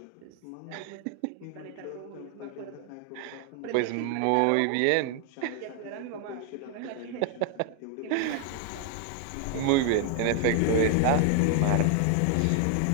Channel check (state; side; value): different; both; correlation 0.00